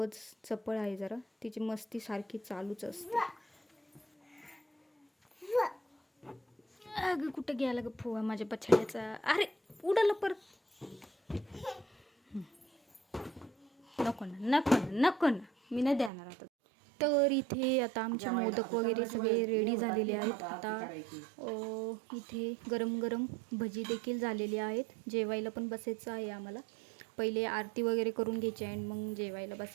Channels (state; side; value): drops out; left; at 16.1 s